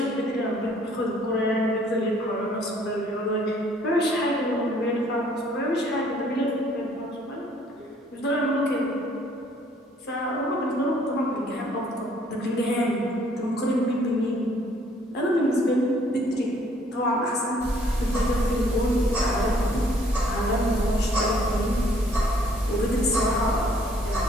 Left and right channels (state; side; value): normal; both; correlation 0.62